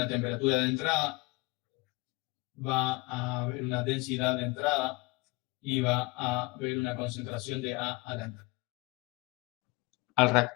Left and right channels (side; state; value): right; quieter; 25.6 dB